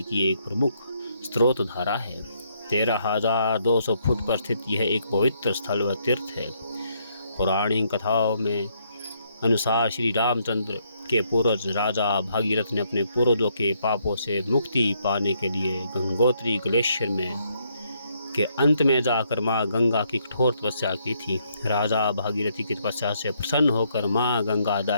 की एक प्रमुख स्रोत धारा है। 13,200 फुट पर स्थित यह एक पवित्र स्थल व तीर्थ है। पौराणिक कथाओं में अनुसार श्री रामचंद्र के पूर्वज राजा भागीरथ ने अपने पूर्वजों के पापों से मुक्ति पाने के लिए गंगोत्री ग्लेशियर में के अंत में जाकर माँ गंगा की कठोर तपस्या की थी। राजा भागीरथी की तपस्या से प्रसन्न होकर माँ गंगा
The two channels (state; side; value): inverted; both; correlation -0.73